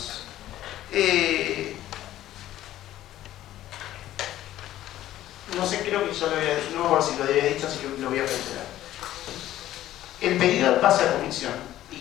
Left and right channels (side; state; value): right; quieter; 13.6 dB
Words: No sé, creo que ya lo había dicho, no me acuerdo si lo había dicho, así que lo voy a reiterar. El pedido pasa a comisión, y